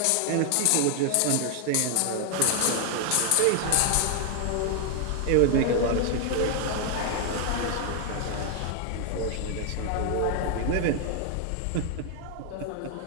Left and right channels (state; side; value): different; both; correlation 0.00